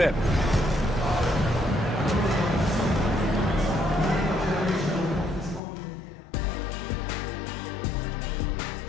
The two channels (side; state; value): right; drops out; at 5.6 s